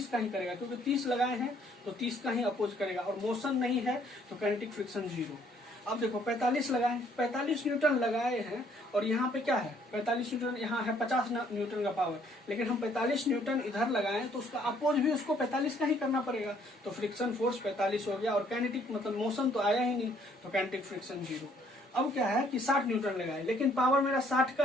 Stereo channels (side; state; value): both; normal; correlation 0.64